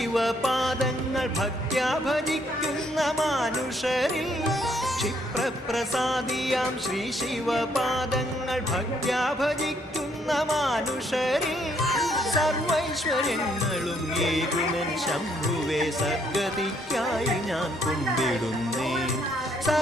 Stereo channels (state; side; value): normal; both; correlation 0.70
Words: ഭക്ത്യാ ഭജിക്കുന്ന മാനുഷരിൽ ക്ഷിപ്രപ്രസാദിയാം ശ്രീ ശിവപാദങ്ങൾ ഭക്ത്യാ ഭജിക്കുന്ന മാനുഷരിൽ സർവൈശ്വര്യങ്ങളും ഏകുമൻ ശംഭുവേ സദ്ഗതിക്കായി ഞാൻ കുമ്പിടുന്നേ